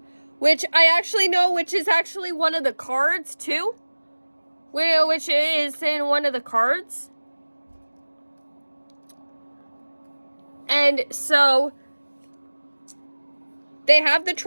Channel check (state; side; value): inverted; both; correlation -1.00